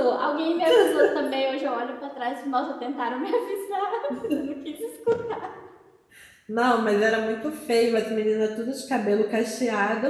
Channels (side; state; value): both; identical; correlation 1.00